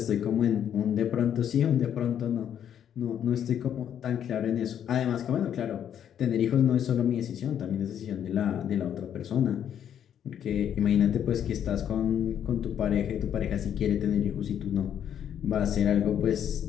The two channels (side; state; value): right; quieter; 9.4 dB